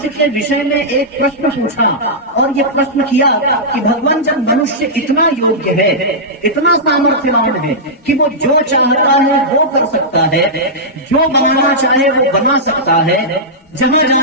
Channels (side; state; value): both; normal; correlation -0.12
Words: के विषय में एक प्रश्न पूछा और ये प्रश्न किया कि भगवान जब मनुष्य इतना योग्य है, इतना सामर्थ्यवान है कि वो जो चाहता है वो कर सकता है, जो बनाना चाहे वो बना सकता है, जहां